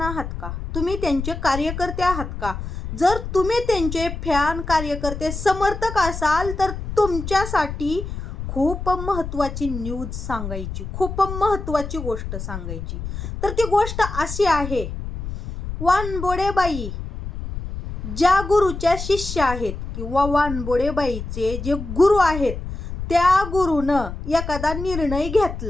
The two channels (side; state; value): left; noise; rumble, 7 dB below the sound